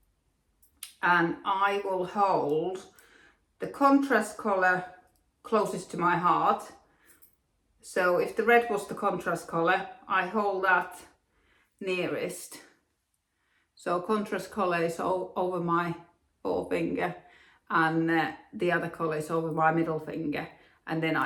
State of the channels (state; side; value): identical; both; correlation 1.00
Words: and I will hold the contrast colour closest to my heart. So if the red was the contrast colour, I hold that nearest. So contrast colour is over my forefinger, and the other colour is over my middle finger, and then